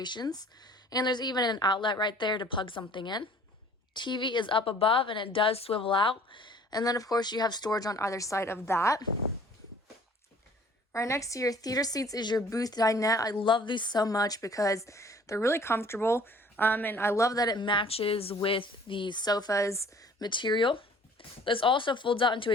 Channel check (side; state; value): both; normal; correlation 0.53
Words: And there's even an outlet right there to plug something in. TV is up above and it does swivel out. And then of course you have storage on either side of that. Right next to your theater seats is your booth dinette. I love these so much because they're really comfortable. And I love that it matches with the sofa's material. This also folds out into